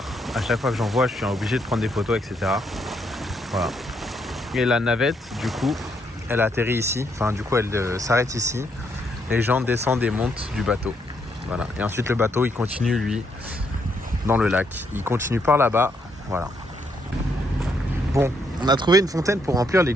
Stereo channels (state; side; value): normal; both; correlation 0.75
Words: à chaque fois que j'en vois, je suis obligé de prendre des photos, etc. Voilà. Et la navette, du coup, elle atterrit ici. Enfin, du coup, elle s'arrête ici. Les gens descendent et montent du bateau. Voilà. Et ensuite, le bateau, il continue, lui, dans le lac. Il continue par là-bas. Voilà. Bon, on a trouvé une fontaine pour remplir les